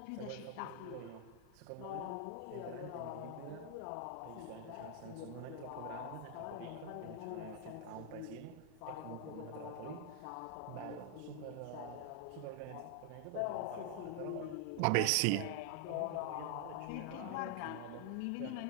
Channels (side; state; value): both; different; correlation 0.00